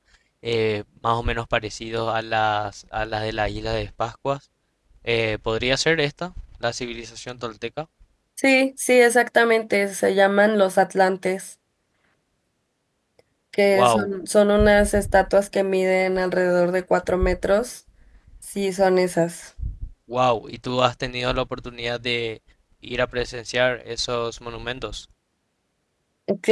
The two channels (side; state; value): both; identical; correlation 1.00